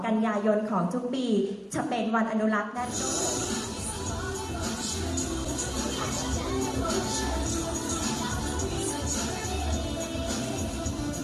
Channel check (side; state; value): both; identical; correlation 1.00